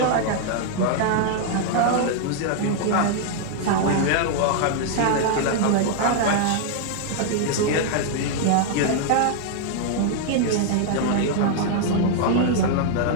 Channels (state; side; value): different; both; correlation -0.01